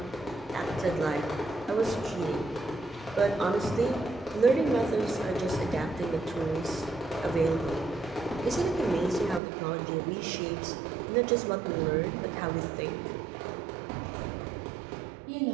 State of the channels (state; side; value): drops out; left; at 9.4 s